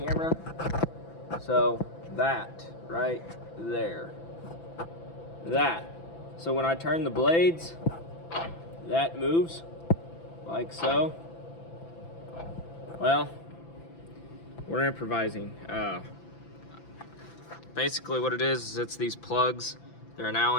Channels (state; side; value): late; right; 6.0 ms